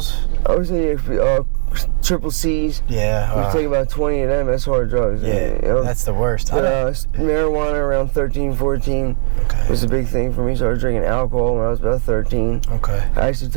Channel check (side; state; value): left; silent; digital silence